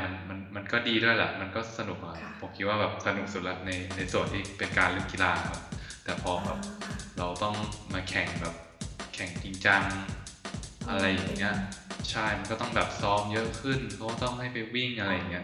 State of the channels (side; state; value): both; identical; correlation 1.00